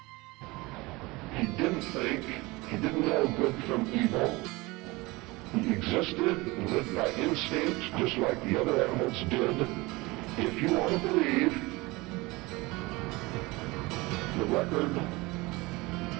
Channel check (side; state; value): left; quieter; 22.7 dB